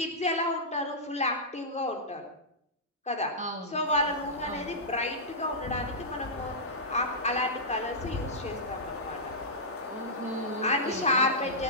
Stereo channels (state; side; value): normal; both; correlation -0.13